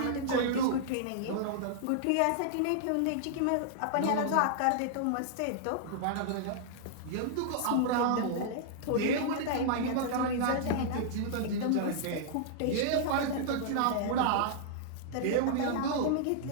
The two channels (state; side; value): different; both; correlation -0.01